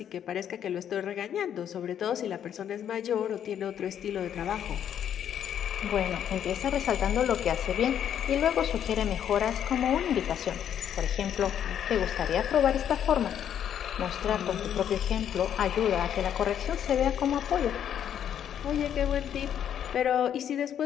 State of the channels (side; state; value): right; quieter; 9.5 dB